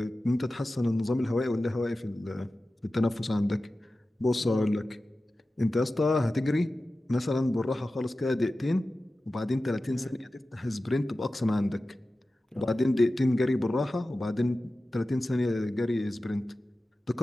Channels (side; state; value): both; normal; correlation 0.95